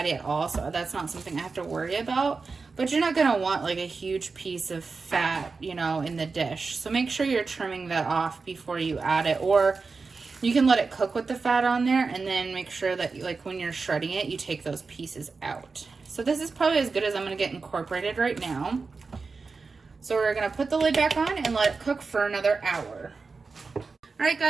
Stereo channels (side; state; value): left; quieter; 4.4 dB